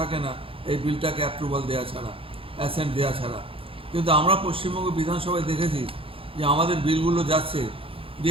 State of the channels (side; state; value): left; late; 0.27 ms